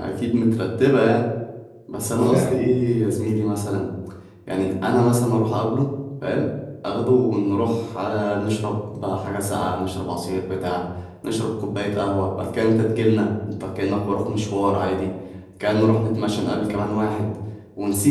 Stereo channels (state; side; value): identical; both; correlation 1.00